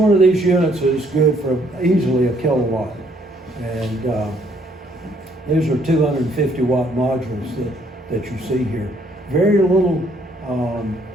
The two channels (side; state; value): both; normal; correlation 0.66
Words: of these units is good for easily a kilowatt. And these are 250 watt modules that you see here. Very little